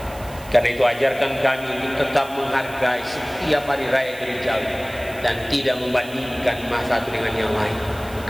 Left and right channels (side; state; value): right; noise; hiss, 19 dB below the sound